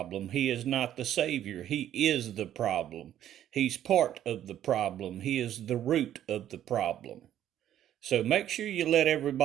He is not the savior. He is the problem. He's part of the problem. He is the root of the problem. So make sure you let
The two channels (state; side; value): quieter; left; 11.3 dB